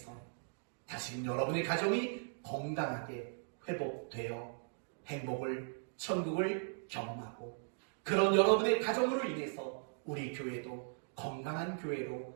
다시금 여러분의 가정이 건강하게 회복되어 행복을, 천국을 경험하고, 그런 여러분의 가정으로 인해서 우리 교회도 건강한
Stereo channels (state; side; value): silent; left; digital silence